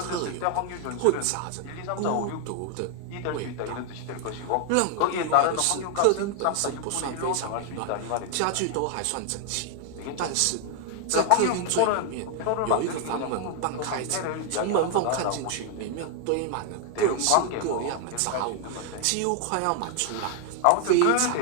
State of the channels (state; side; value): different; both; correlation 0.00